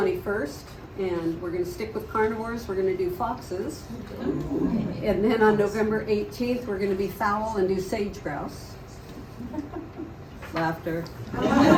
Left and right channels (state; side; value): identical; both; correlation 1.00